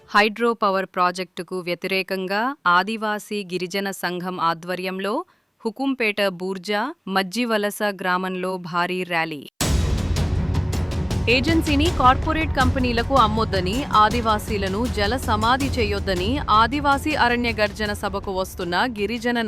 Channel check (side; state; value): both; identical; correlation 1.00